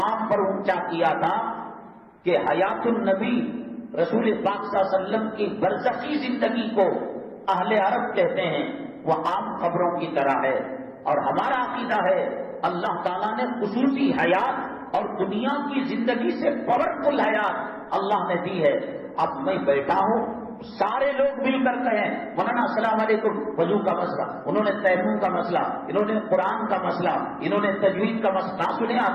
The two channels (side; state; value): both; identical; correlation 1.00